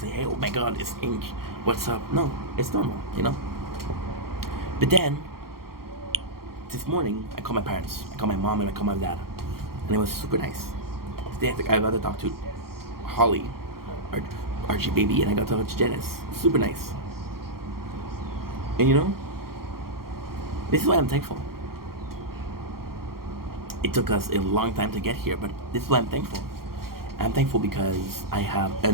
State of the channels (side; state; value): left; late; 0.93 ms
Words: hey, oh my god, it's Ink. What's up? No, it's normal, you know? But then, this morning, I called my parents. I called my mom and I called my dad. And it was super nice. I got to talk to Holly, Archie baby, and I got to talk to Janice. Super nice. And you know, this is why I'm thankful. It took us a long time to get here, but this is why I'm thankful. I'm thankful because I have